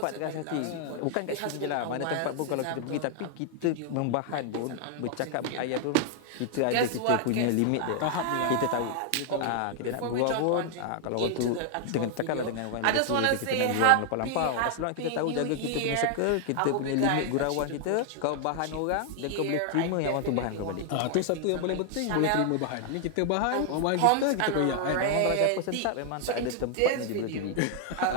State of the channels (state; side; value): different; both; correlation 0.00